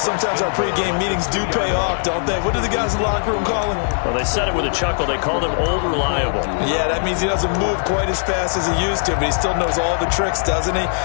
our pregame meetings do pay off, don't they? What do the guys in the locker room call him? Well, they said it with a chuckle. They called him Old Reliable. Yeah, that means he doesn't move quite as fast as he used to, but he still knows all the tricks, doesn't he?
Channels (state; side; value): silent; right; digital silence